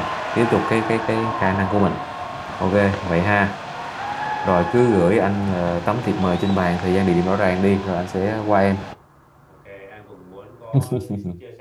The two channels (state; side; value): identical; both; correlation 1.00